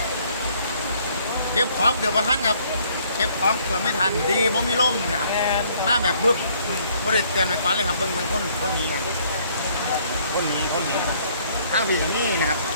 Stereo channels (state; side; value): inverted; both; correlation -0.63